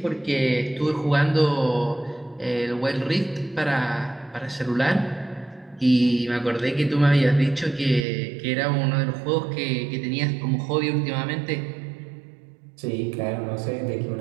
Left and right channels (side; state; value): left; drops out; at 8.1 s